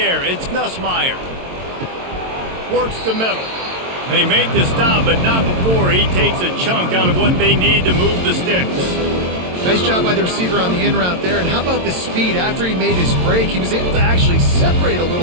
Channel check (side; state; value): left; late; 22 ms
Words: it's Nussmeier. Works the middle. They make the stop, but not before he takes a chunk out of what they need to move the sticks. Nice job by the receiver on the in route there. And how about the speed? After he made his break, he was able to actually separate a